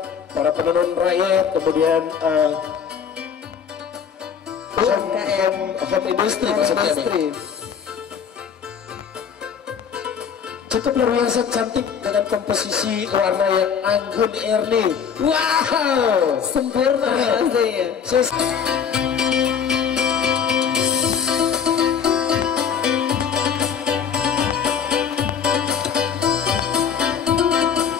para penenun rakyat, kemudian home industry maksudnya nih. Cukup luar biasa cantik dengan komposisi warna yang anggun Ernie. Wow, Sempurna rasanya.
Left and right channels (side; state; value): right; quieter; 7.3 dB